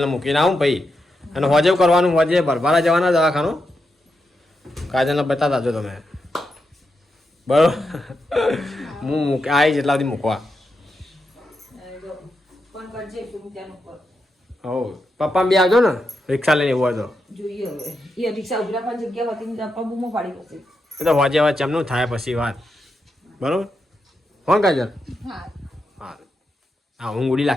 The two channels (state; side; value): normal; both; correlation 0.85